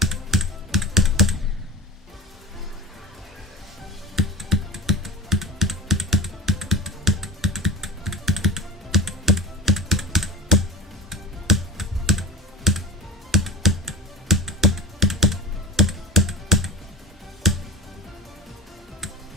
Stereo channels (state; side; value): normal; both; correlation 0.36